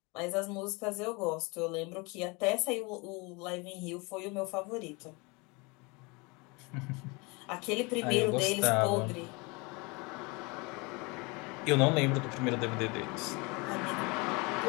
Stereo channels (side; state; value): right; quieter; 27.7 dB